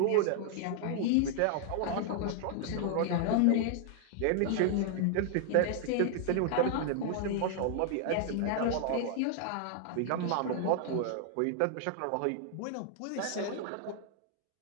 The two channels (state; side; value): different; both; correlation 0.00